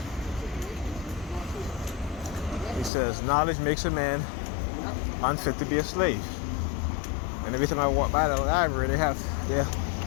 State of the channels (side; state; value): right; drops out; at 2.9 s